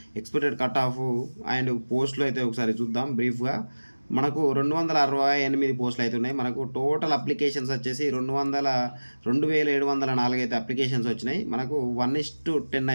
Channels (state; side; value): inverted; both; correlation -1.00